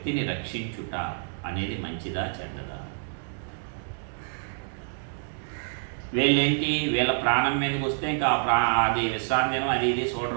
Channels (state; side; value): silent; left; digital silence